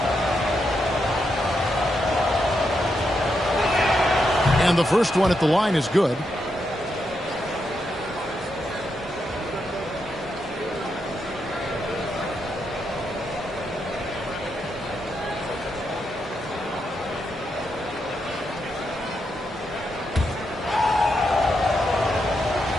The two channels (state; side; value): normal; both; correlation 0.83